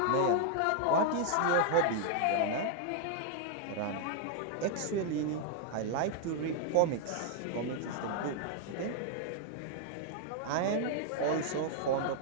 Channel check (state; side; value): different; both; correlation 0.00